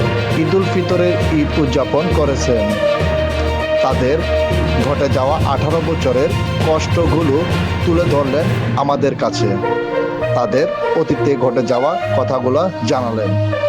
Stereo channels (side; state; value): both; identical; correlation 1.00